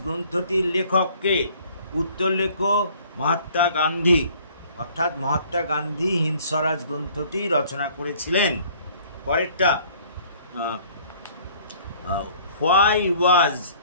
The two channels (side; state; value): both; inverted; correlation -0.56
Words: গ্রন্থটির লেখককে? উত্তর লেখো, মহাত্মা গান্ধী। অর্থাৎ মহাত্মা গান্ধী হিন্দ স্বরাজ গ্রন্থটি রচনা করেছিলেন। পরেরটা, why was